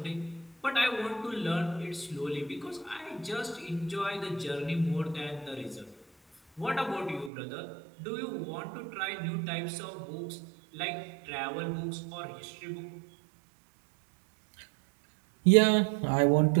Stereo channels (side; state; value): left; drops out; at 7.3 s